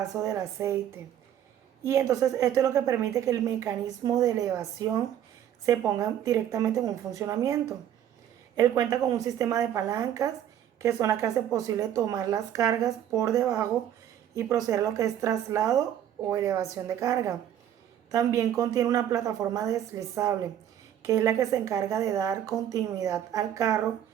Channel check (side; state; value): left; quieter; 10.5 dB